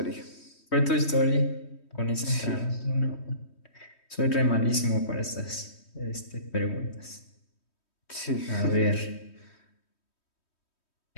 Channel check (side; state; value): right; late; 3.1 ms